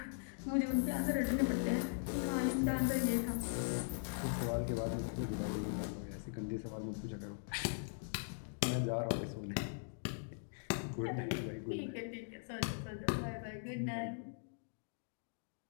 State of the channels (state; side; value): silent; right; digital silence